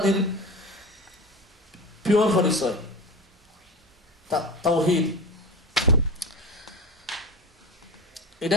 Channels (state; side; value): normal; both; correlation 0.29